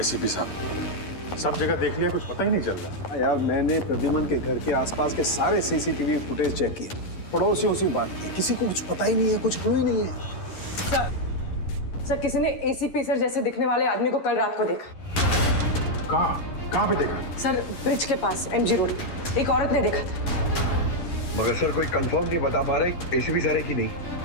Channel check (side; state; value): right; late; 11 ms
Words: साहब? सब जगह देख लिया, कुछ पता ही नहीं चल रहा। यार, मैंने प्रद्युमन के घर के आसपास के सारे सीसीटीवी फुटेज चेक किए, पड़ोसियों से बात की, किसी को कुछ पता ही नहीं है, कुछ क्लू ही नहीं है। सर किसी ने एसीपी सर जैसे दिखने वाले आदमी को कल रात को देखा। कहाँ पे देखा? सर ब्रिज के पास एमजी रोड पे एक औरत ने देखा था। मगर सर कोई कंफर्म नहीं बता पा रहे एसीपी सर है कि नहीं।